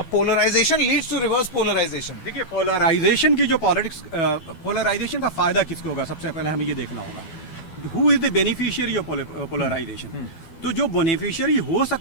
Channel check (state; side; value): late; right; 12 ms